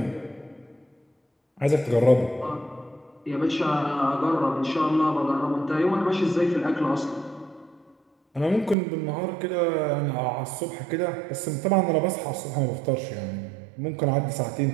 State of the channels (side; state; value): left; drops out; at 8.8 s